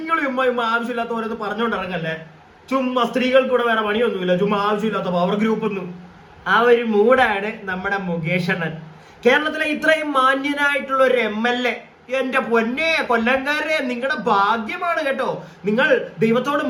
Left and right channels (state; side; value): identical; both; correlation 1.00